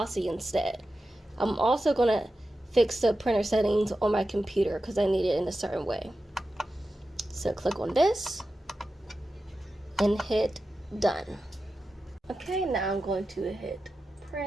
instead. I'm also gonna fix the printer settings on my computer because I need it in a certain way. So click on this and hit done. Okay, now I'm going to hit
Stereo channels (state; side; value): normal; both; correlation 0.92